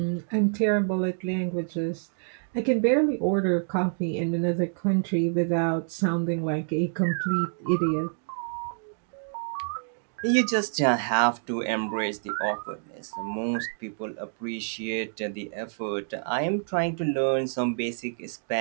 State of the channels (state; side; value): silent; left; digital silence